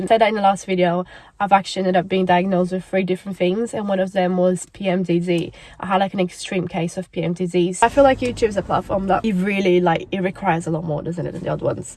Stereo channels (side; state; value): both; identical; correlation 1.00